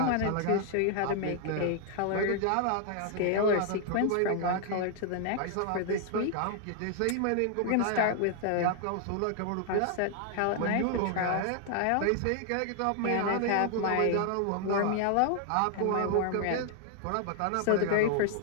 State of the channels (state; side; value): different; both; correlation 0.00